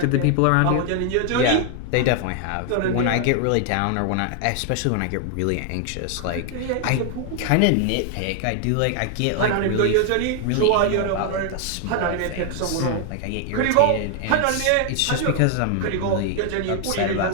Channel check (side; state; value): both; different; correlation 0.00